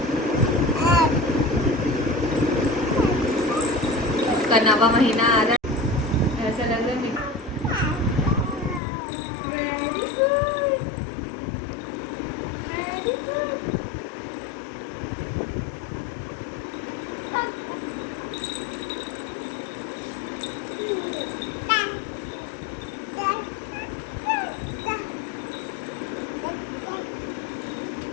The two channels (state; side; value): drops out; right; at 8.8 s